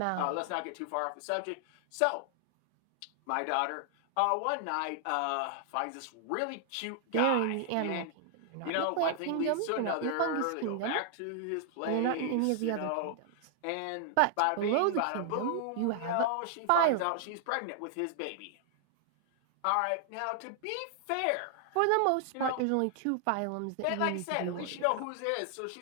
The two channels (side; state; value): both; different; correlation 0.00